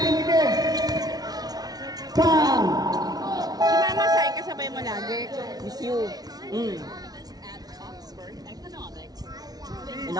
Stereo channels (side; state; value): left; late; 0.19 ms